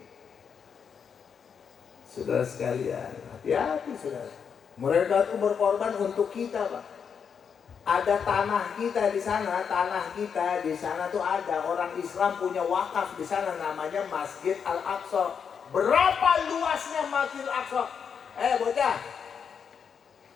Saudara sekalian, hati-hati saudara. Mereka itu berkorban untuk kita, Pak. Ada tanah kita di sana, tuh ada orang Islam punya wakaf di sana, namanya Masjid Al-Aqsa. Berapa luasnya Masjid Al-Aqsa? Bocah,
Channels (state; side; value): quieter; right; 6.8 dB